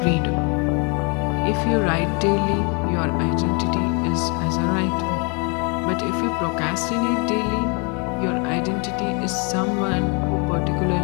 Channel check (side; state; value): right; quieter; 34.1 dB